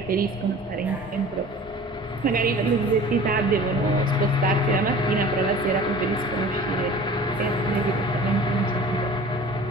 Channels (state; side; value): normal; both; correlation 0.43